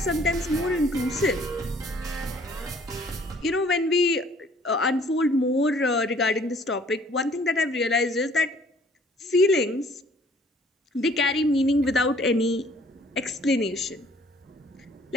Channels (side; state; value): both; normal; correlation 0.58